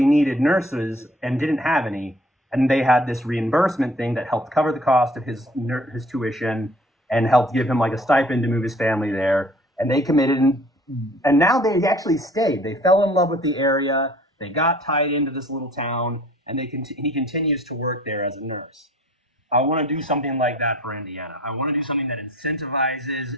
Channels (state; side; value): normal; both; correlation 0.52